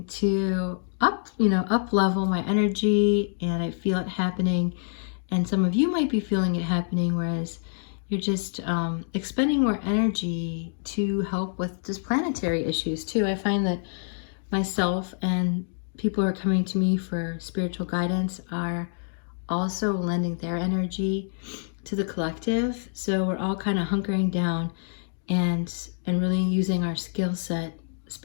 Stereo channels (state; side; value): silent; right; digital silence